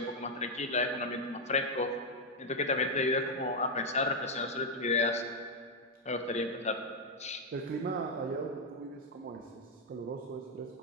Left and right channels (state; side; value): normal; both; correlation 0.00